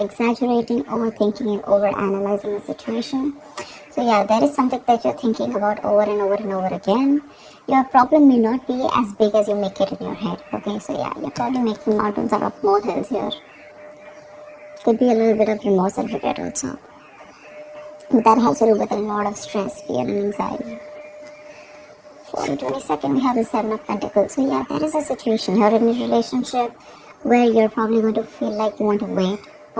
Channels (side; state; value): both; identical; correlation 1.00